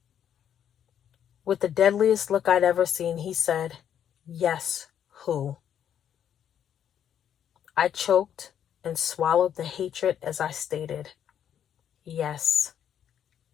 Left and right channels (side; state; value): right; quieter; 9.4 dB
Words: With the deadliest look I'd ever seen, he said, yes, who? I choked and swallowed the hatred as I stated, yes,